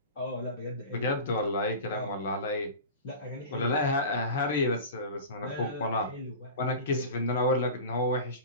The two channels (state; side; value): inverted; both; correlation -0.33